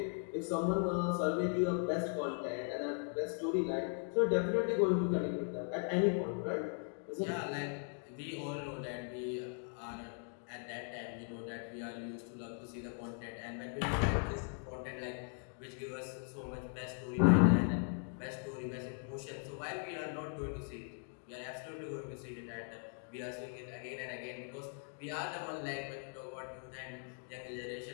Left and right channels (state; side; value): silent; right; 52 dB below the other